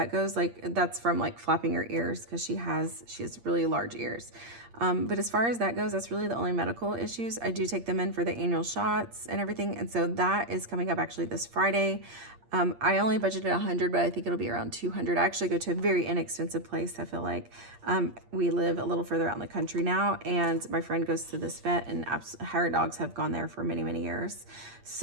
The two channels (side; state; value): left; late; 8.6 ms